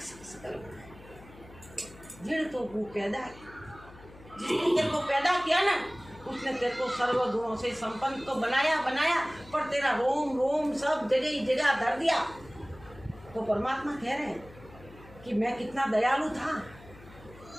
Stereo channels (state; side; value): noise; left; hum, 20 dB below the sound